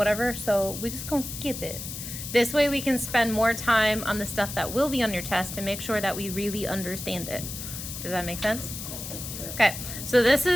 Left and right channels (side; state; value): left; noise; hiss, 8 dB below the sound